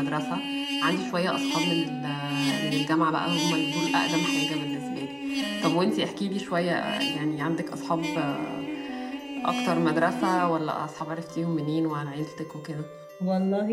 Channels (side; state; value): both; identical; correlation 1.00